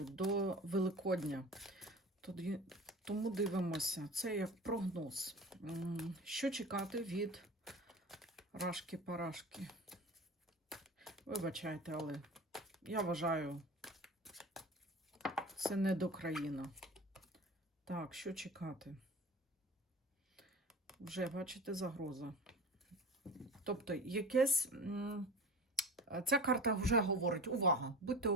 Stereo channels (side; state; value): both; normal; correlation 0.34